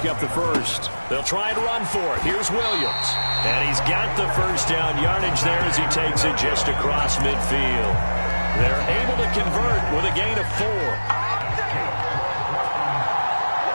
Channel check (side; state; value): both; inverted; correlation -1.00